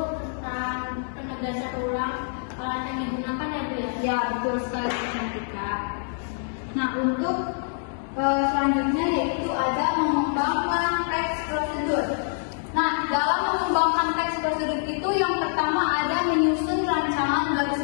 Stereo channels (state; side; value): silent; right; 61 dB below the other